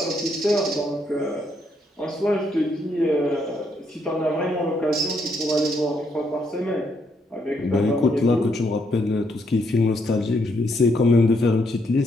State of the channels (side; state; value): both; normal; correlation 0.75